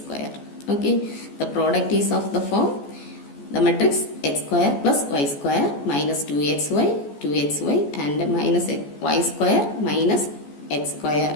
Okay. The product is of the form, the matrix x square plus y square minus 2xy, 2xy and minus y square minus x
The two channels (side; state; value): right; late; 14 ms